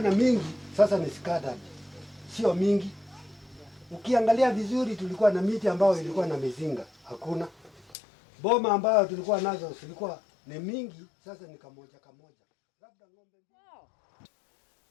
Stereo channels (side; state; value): right; drops out; at 8.0 s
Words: mingi sasa ni scattered. Sio mingi. Ukiangalia vizuri tulikuwa na miti ambayo ilikuwa na mizinga, hakuna. Boma ambayo tulikuwa nazo zilikuwa ni mingi, sasa ni kamoja. Labda ng'ombe